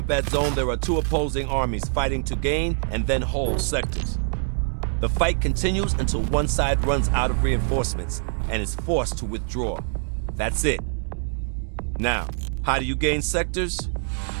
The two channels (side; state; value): left; silent; digital silence